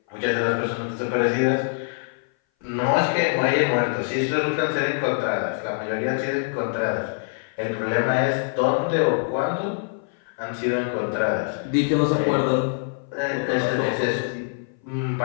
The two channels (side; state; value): right; silent; 58 dB below the other